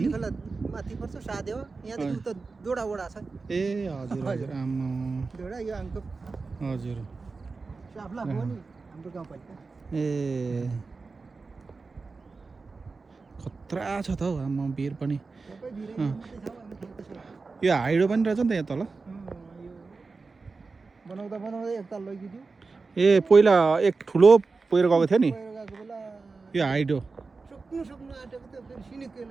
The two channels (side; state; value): left; quieter; 4.2 dB